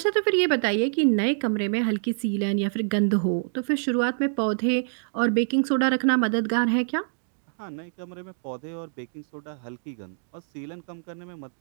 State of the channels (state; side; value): silent; left; digital silence